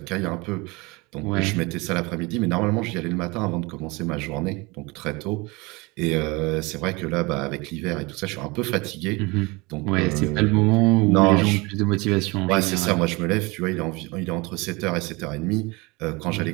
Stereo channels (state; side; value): quieter; left; 25.2 dB